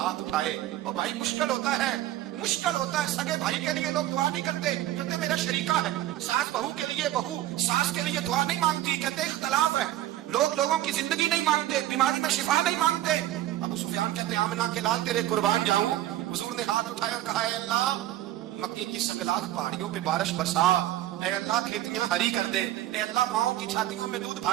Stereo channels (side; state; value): left; quieter; 14.0 dB